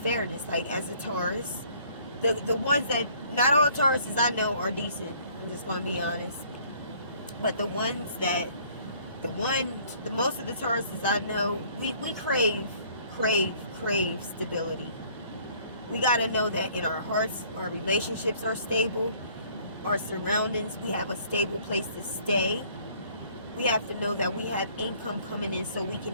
Like, as a Taurus, the ones that, not all Tauruses I know are decent. I'm just gonna be honest. But the most of the Tauruses I know, we crave stability. We got to know that in our hearts, our relationships are stable, our surroundings, we have a stable place to stay. We have to know that we have income coming in so we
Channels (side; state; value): both; inverted; correlation -0.59